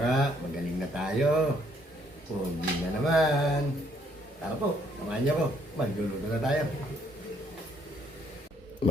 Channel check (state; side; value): normal; both; correlation 0.67